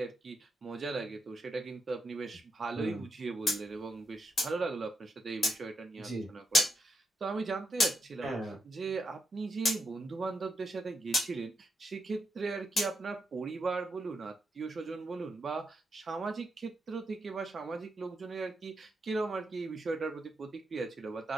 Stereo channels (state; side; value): normal; both; correlation 0.83